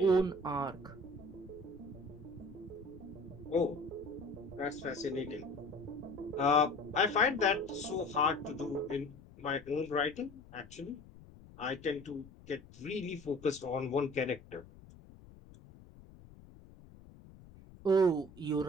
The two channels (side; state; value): left; noise; rumble, 20 dB below the sound